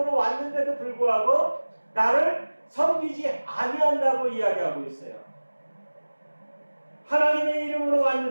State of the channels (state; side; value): inverted; both; correlation -1.00